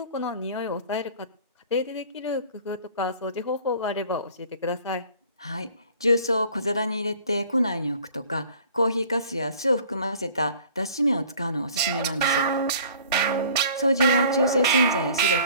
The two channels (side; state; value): both; inverted; correlation -0.50